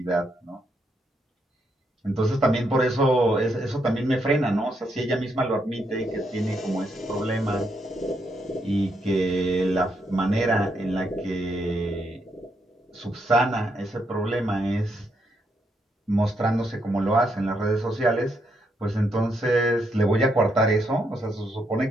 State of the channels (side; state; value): both; normal; correlation 0.78